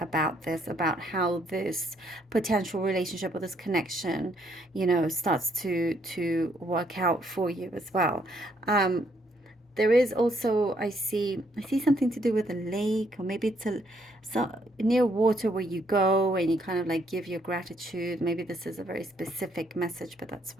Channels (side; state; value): both; normal; correlation 0.70